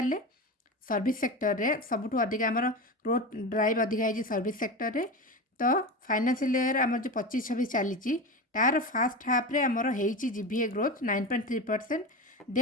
सर्विस सेक्टर रे सबुठ अधिक आमर ग्रोथ ड्राइव अधिका है सर्विस सेक्टर रे तो फाइनेंशियल ईयर आमर जो 25-26 चली तार फास्ट हाफ रे आमर होती जीबीए ग्रोथ 9.3%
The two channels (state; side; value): normal; both; correlation 0.24